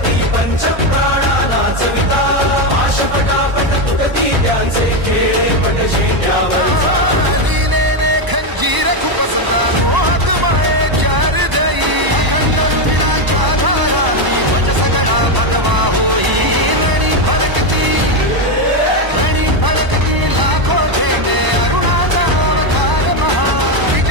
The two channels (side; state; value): left; late; 1.0 ms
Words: पंचप्राणा नाचविता पाशपटापट तुटती त्यांचे खेळे पटशे